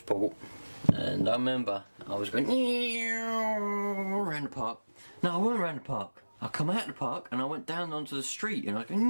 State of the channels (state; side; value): inverted; both; correlation -1.00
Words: port, and I remember I was going around the park. No, I wasn't around the park. I come out of the park and I went down onto the street, and I was